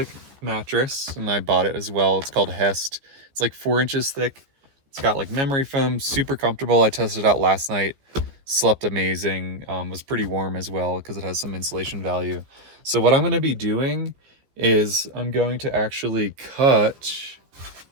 mattress, and I bought it as well. It's called Hest. It's like 4 inches thick. It's got like memory foam, super comfortable. I tested it out last night, slept amazing. Was pretty warm as well because it has some insulation value. So what I'm going to be doing is I'm going to actually cut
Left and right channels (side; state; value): left; late; 15 ms